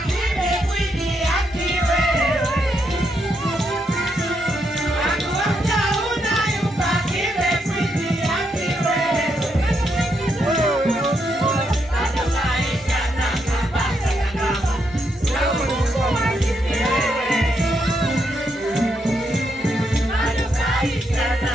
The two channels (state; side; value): normal; both; correlation 0.79